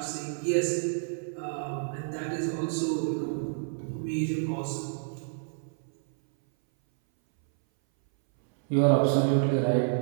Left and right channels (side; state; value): left; silent; 59 dB below the other